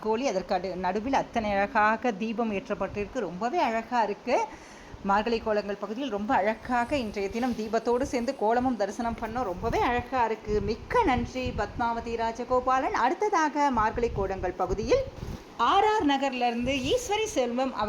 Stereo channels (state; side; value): identical; both; correlation 1.00